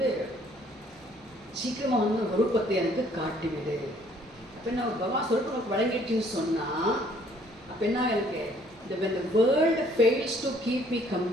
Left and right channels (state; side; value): noise; right; hum, 28 dB below the sound